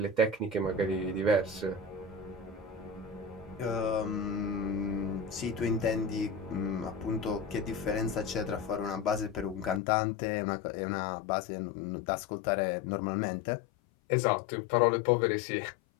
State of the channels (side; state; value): right; drops out; at 9.8 s